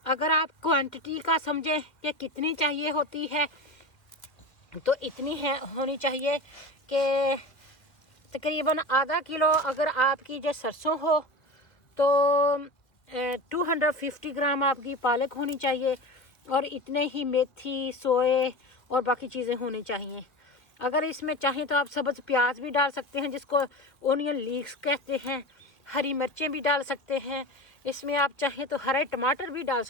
अगर आप क्वांटिटी का समझें कि कितनी चाहिए होती है तो इतनी है होनी चाहिए कि तकरीबन आधा किलो अगर आपकी जो सरसों हो तो 250 ग्राम आपकी पालक होनी चाहिए और इतने ही मेथी, सोए और बाकी चीज़ें होनी चाहिए। अगर इसमें चाहें तो आप सब्ज़ प्याज भी डाल सकते हैं, जिसको ओनियन लीक्स कहते हैं। हरी मिर्चें भी डाल सकते हैं, इसमें आप चाहें तो हरे टमाटर भी डाल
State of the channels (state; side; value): late; right; 2.1 ms